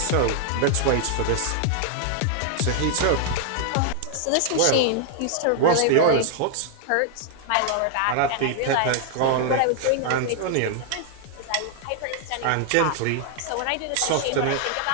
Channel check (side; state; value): both; different; correlation 0.00